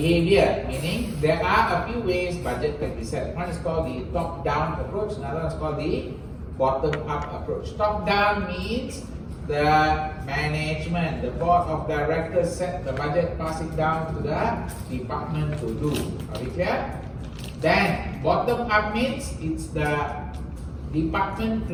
meaning there are a few ways budget can be set. One is called the top-down approach, another one is called the bottom-up approach. Top-down means the management, the board of directors set the budget, pass it down to the department to do. Are we clear? Then bottom-up means it's the department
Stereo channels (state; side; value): identical; both; correlation 1.00